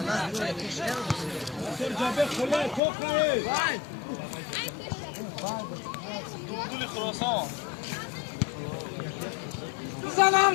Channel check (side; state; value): right; drops out; at 2.8 s